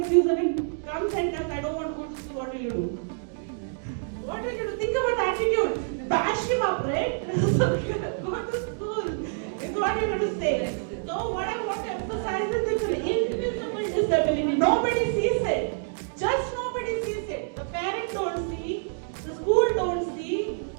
and comes and says, I don't want to go to school, what will you do? What will you do? Think about attitude. Bash him up, right? So go to school. Is what you're going to say. So what I want to emphasize is it's an invisible disability. Nobody sees it. Just nobody sees it. The parents don't see, the school don't see,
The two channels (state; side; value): silent; left; digital silence